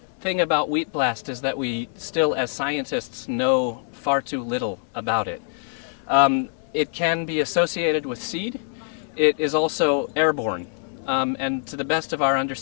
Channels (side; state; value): right; silent; digital silence